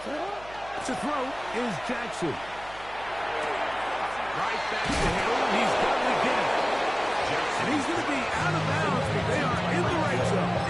To throw is Jackson. Right back to Hill. He's got it again. And he's going to be out of bounds, but they are in the right zone,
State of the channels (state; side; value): noise; right; hum, 20 dB below the sound